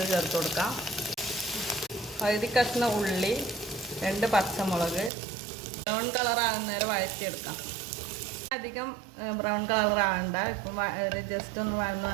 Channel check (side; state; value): left; drops out; at 5.1 s